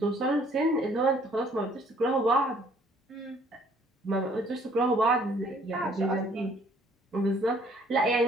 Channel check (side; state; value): both; normal; correlation 0.60